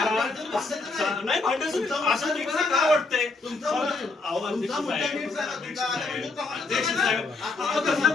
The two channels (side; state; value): right; quieter; 3.7 dB